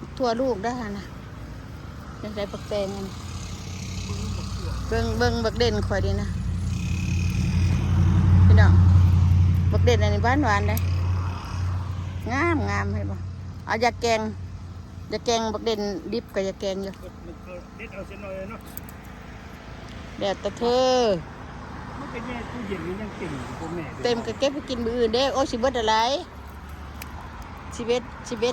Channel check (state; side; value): identical; both; correlation 1.00